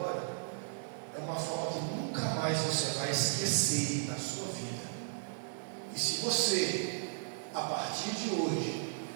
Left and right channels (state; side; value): silent; left; 54 dB below the other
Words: é uma forma que nunca mais você vai esquecer na sua vida. E se você, a partir de hoje,